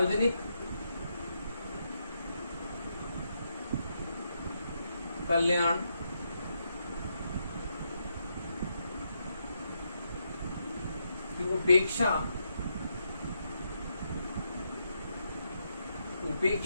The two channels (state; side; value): inverted; both; correlation -0.80